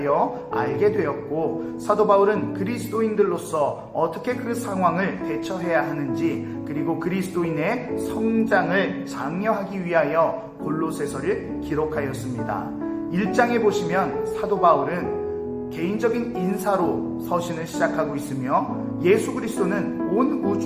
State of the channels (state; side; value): identical; both; correlation 1.00